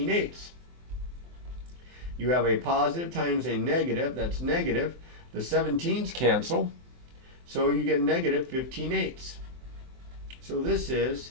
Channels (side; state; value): left; late; 23 ms